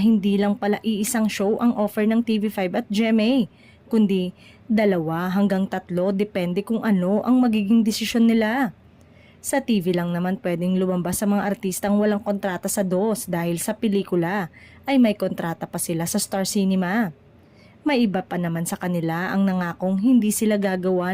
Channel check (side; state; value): both; identical; correlation 1.00